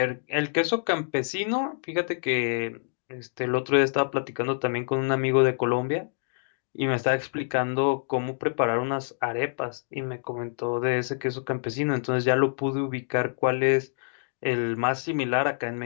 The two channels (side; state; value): right; silent; digital silence